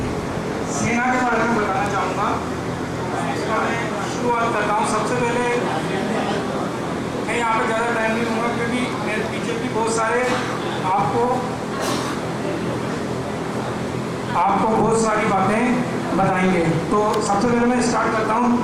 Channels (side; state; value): both; identical; correlation 1.00